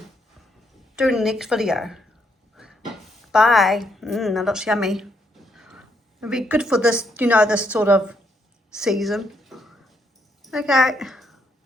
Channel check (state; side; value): normal; both; correlation 0.75